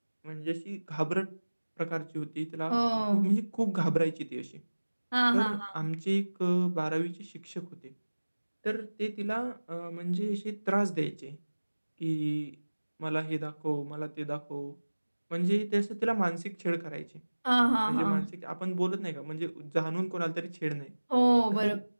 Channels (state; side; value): inverted; both; correlation -1.00